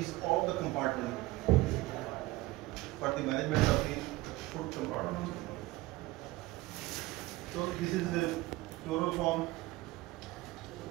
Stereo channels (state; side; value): quieter; left; 19.2 dB